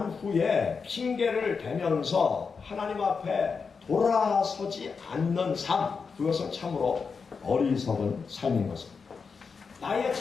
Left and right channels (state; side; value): quieter; right; 5.3 dB